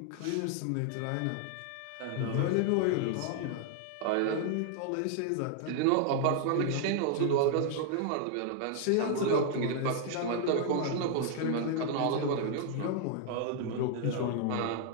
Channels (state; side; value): different; both; correlation 0.00